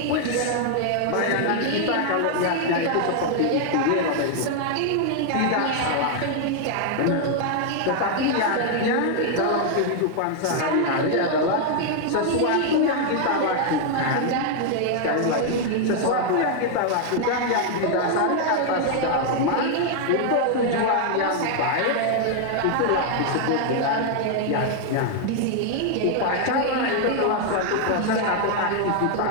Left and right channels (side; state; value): both; different; correlation 0.00